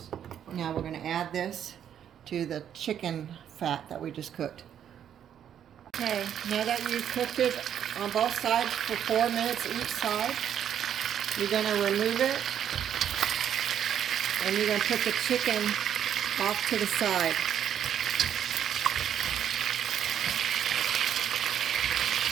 Now we're going to add this to the chicken fat that we just cooked. Okay, now that you've cooked it on both sides for 4 minutes each side, you're going to remove it and you're going to put the chicken off to the side.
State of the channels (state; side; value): quieter; left; 9.4 dB